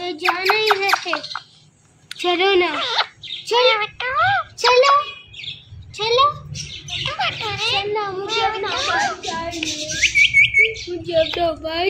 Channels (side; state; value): both; identical; correlation 1.00